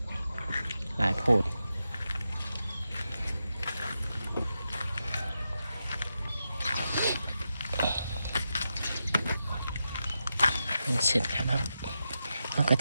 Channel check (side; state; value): both; inverted; correlation -0.87